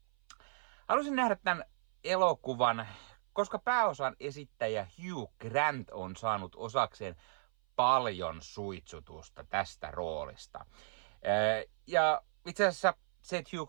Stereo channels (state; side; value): silent; left; 54 dB below the other